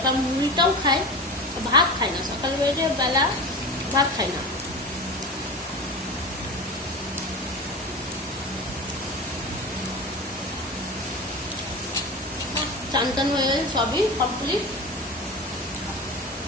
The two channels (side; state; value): both; normal; correlation 0.28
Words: মুড়িটাও খায়, ভাত খায় না, সকাল বেলা ভাত খায় না। চান টান হয়ে সবই কমপ্লিট,